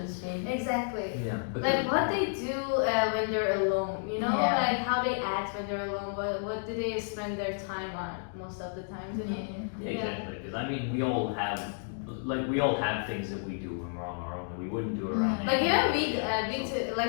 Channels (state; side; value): silent; right; digital silence